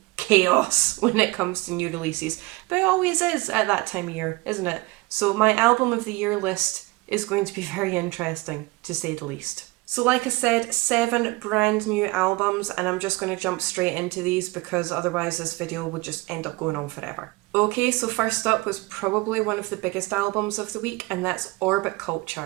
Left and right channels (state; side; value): quieter; left; 22.8 dB